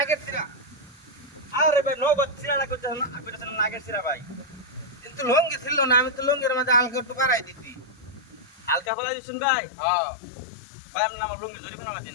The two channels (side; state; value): right; drops out; at 8.9 s